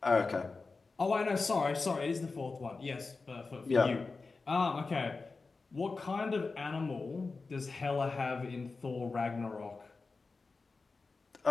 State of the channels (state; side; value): quieter; right; 4.1 dB